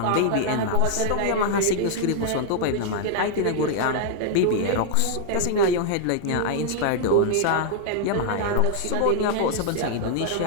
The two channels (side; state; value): both; different; correlation -0.01